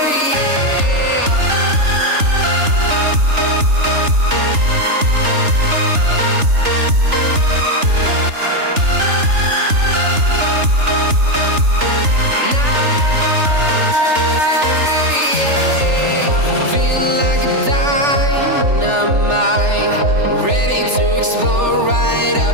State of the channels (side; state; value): left; late; 3.4 ms